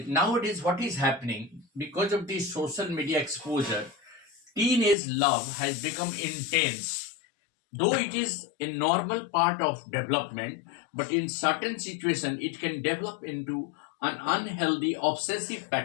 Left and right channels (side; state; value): right; drops out; at 5.0 s